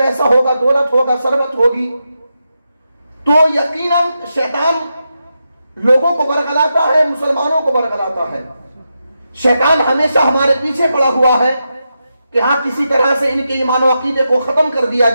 होगा, दौलत होगा, सरबत होगी, तो यकीनन शैतान लोगों को बरगलाता है, मुसलमानों को बरगलाता है। शैतान हमेशा हमारे पीछे पड़ा हुआ है कि हाँ, किसी तरह से इनके ईमान और अकीदे को खत्म कर दिया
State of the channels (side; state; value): both; inverted; correlation -0.87